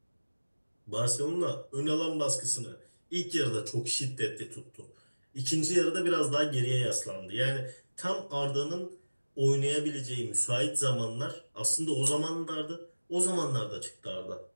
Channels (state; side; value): inverted; both; correlation -1.00